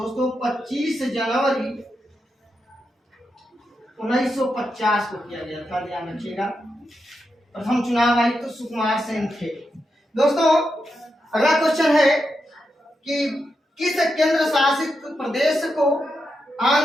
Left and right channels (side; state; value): both; normal; correlation 0.86